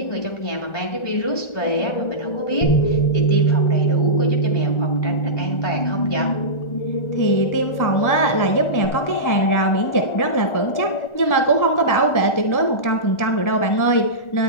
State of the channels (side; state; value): right; late; 1.4 ms